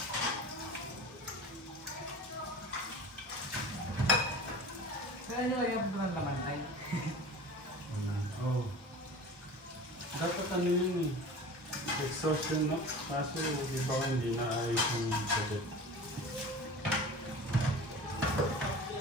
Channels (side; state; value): both; normal; correlation 0.37